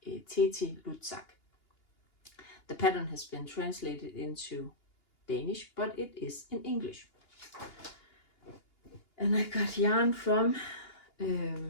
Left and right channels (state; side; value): late; right; 2.8 ms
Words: Teti Lutzak. The pattern has been translated into Danish, but it is in English. And I got yarn from,